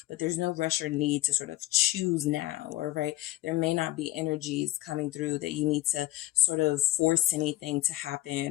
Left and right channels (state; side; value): quieter; right; 16.5 dB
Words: but there's no rush or need to sort of choose now, or right. There may not be energies coming through that you need to sort of force anything to